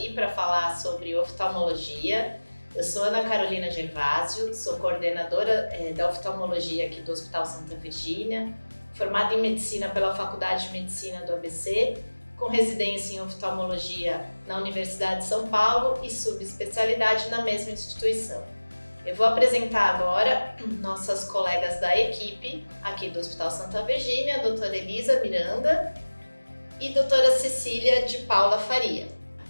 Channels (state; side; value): inverted; both; correlation -1.00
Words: para falar sobre oftalmologia. Eu sou Ana Carolina Gervásio, sou coordenadora da oftalmologia aqui do Hospital Santa Virgínia, formada em medicina pela Faculdade de Medicina do ABC, com residência em oftalmologia na Universidade de São Paulo e subespecialidade na mesma instituição. Eu vou apresentar agora nossas colegas da equipe aqui do Hospital Santa Virgínia, a doutora Elisa Miranda e doutora Cecília de Paula Faria.